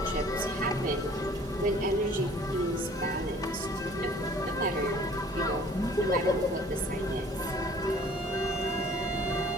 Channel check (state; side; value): normal; both; correlation 0.53